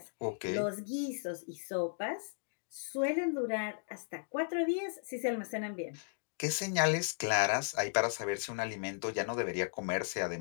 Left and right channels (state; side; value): silent; right; digital silence